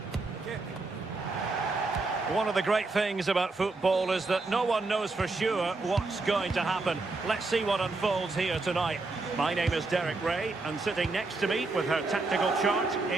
One of the great things about football is that no one knows for sure what's going to happen. Let's see what unfolds here tonight. My name is Derek Ray, and sitting next to me with her tactical chart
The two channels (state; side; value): quieter; left; 3.5 dB